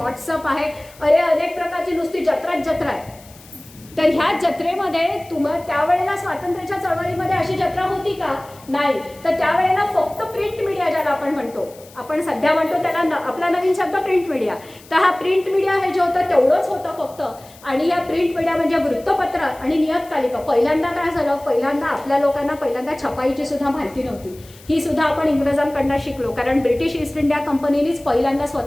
आहे, अनेक प्रकारची नुसती जत्रा आहे. तर ह्या जत्रेमध्ये त्यावेळेला स्वातंत्र्याच्या चळवळीमध्ये अशी जत्रा होती का? नाही. तर त्यावेळेला फक्त प्रिंट मीडिया ज्याला आपण म्हणतो, आपण सध्या म्हणतो त्याला आपला नवीन शब्द प्रिंट मीडिया. तर हा प्रिंट मीडिया हे जे होतं तेवढंच होतं फक्त. आणि या प्रिंट मीडिया म्हणजे वृत्तपत्र आणि नियतकालिका. पहिल्यांदा काय झालं, पहिल्यांदा आपल्या लोकांना पहिल्यांदा छपाईची सुद्धा माहिती नव्हती. ही सुद्धा आपण इंग्रजांकडनं शिकलो, कारण ब्रिटिश ईस्ट इंडिया कंपनीनेच पहिल्यांदा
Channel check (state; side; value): noise; left; hiss, 23 dB below the sound